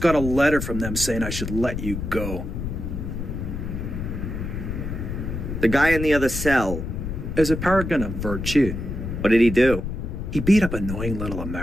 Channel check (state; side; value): noise; left; rumble, 5 dB below the sound